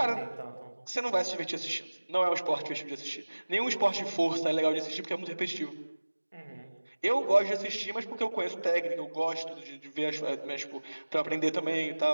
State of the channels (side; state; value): both; inverted; correlation -1.00